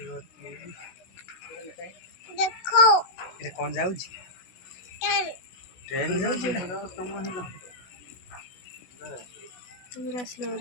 देखो ये कौन जाउची ट्रेन जाउची पूरा स्लो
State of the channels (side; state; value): right; late; 16 ms